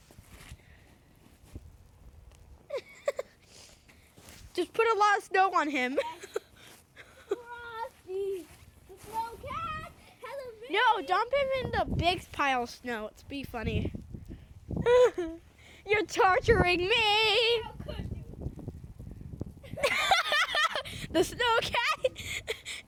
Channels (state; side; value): identical; both; correlation 1.00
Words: Just put a lot of snow on him. Frosty the snow cat has a baby. No, dump him in the big pile of snow. It's be funny. You're torturing me. How could you? The snow cat